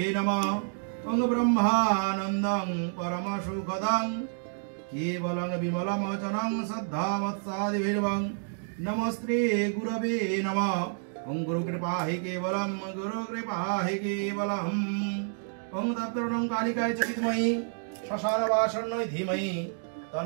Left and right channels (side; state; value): left; silent; digital silence